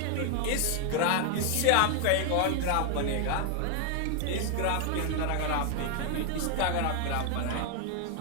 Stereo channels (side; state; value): both; different; correlation 0.00